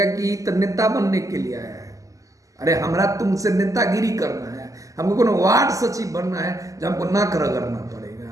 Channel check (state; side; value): late; left; 0.16 ms